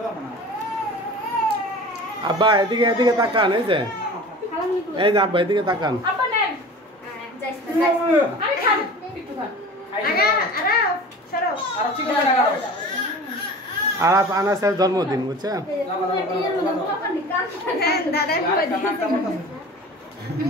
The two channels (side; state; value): both; normal; correlation 0.39